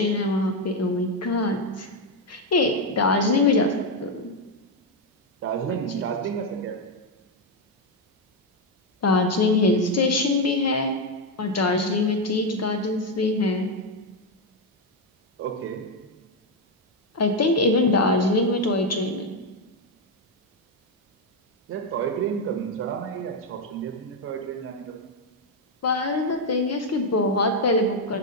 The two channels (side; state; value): both; normal; correlation 0.05